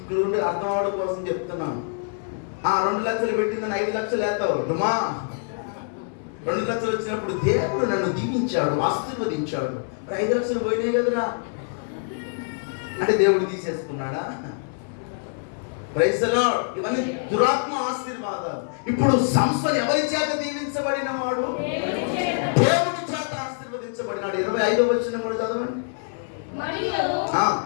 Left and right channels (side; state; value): right; silent; digital silence